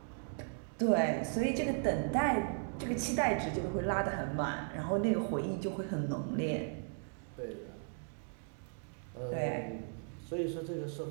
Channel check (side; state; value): left; silent; 53 dB below the other